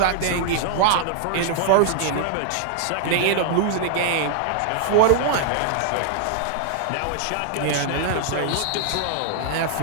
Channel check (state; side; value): different; both; correlation -0.01